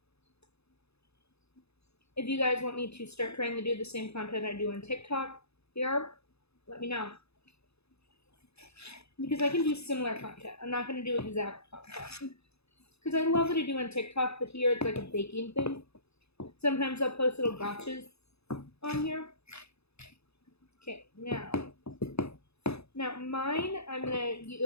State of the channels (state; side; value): late; right; 0.79 ms